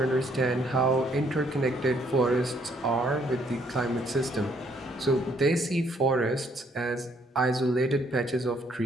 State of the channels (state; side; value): normal; both; correlation 0.67